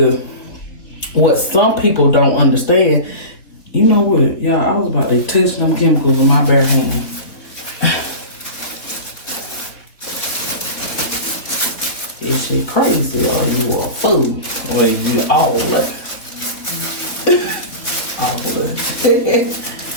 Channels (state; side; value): late; right; 3.7 ms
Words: what some people don't understand, you know what, y'all, I was about to touch them chemicals with my bare hand. Is shit crazy, or you a fool, or you all that.